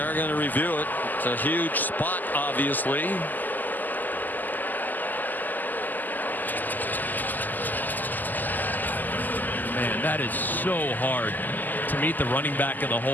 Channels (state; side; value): late; right; 0.085 ms